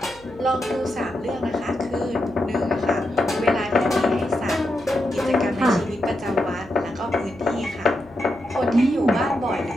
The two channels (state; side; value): noise; left; hum, 25 dB below the sound